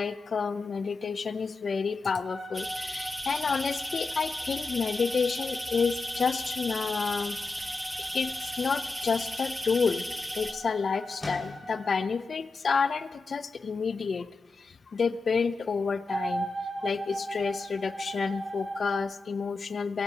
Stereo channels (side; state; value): right; quieter; 4.0 dB